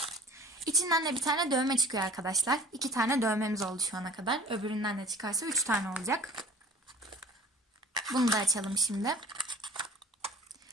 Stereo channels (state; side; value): normal; both; correlation 0.47